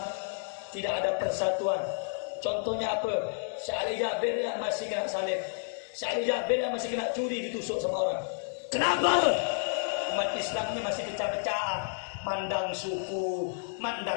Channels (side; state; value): right; silent; digital silence